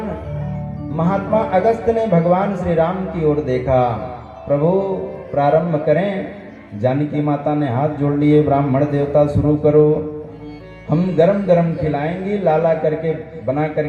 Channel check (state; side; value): identical; both; correlation 1.00